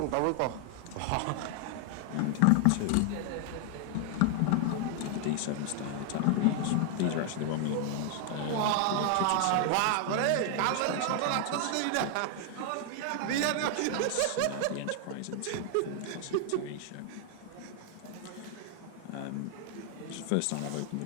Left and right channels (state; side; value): different; both; correlation 0.00